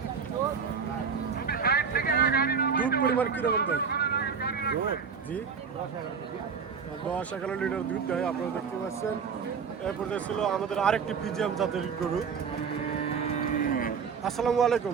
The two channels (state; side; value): quieter; left; 6.1 dB